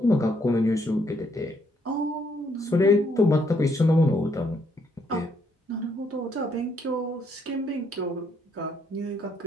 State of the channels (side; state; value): both; normal; correlation 0.72